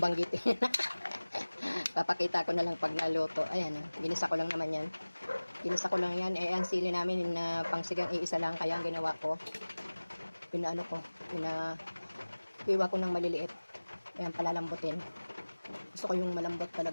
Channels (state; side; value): inverted; both; correlation -1.00